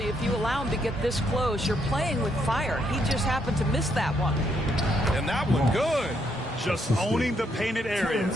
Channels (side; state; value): both; normal; correlation 0.74